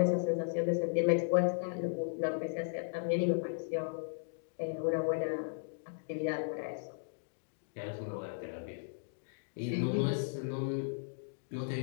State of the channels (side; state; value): right; silent; digital silence